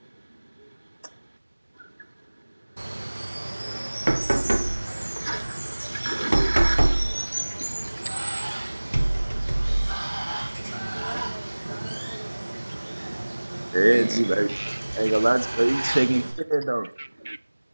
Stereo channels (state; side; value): inverted; both; correlation -1.00